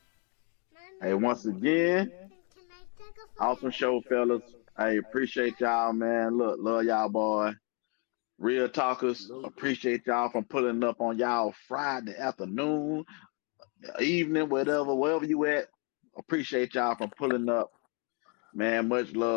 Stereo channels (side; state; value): right; quieter; 34.9 dB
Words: Hey, once again, awesome show, fellas. I appreciate y'all, man. Look, love y'all, boy. Real talkers, appreciate y'all from pulling up on y'all Friday afternoon, evening, wherever you at. Appreciate y'all from pulling up. Man, much